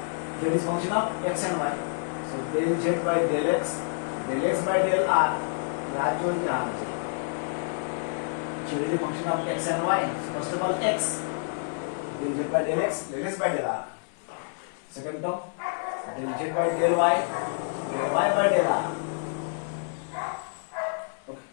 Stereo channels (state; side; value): silent; right; digital silence